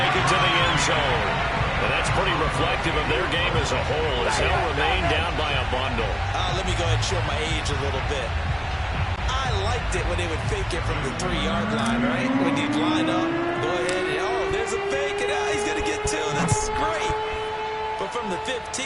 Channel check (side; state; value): both; identical; correlation 1.00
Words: it to the end zone. And that's pretty reflective of their game as a whole, as they'll remain down by a bundle. Let me go ahead and show my age a little bit. I liked it when they would fake it from the 3-yard line, right? When you'd line up, go ahead and, oh, there's a fake, and he's going to get 2. That's great. But from the